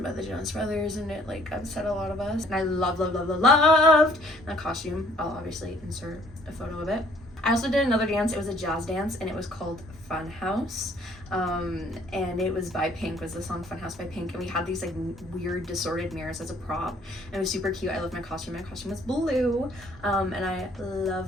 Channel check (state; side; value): normal; both; correlation 0.60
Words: by the Jonas Brothers, and it like upset a lot of us. And I loved that costume. I'll obviously insert a photo of it. I also did another dance. It was a jazz dance, and it was called Fun House. And it was by Pink, was the song Fun House by Pink. And we had these like weird distorted mirrors as a prop. And it was super cute. I loved my costume. My costume was blue. And I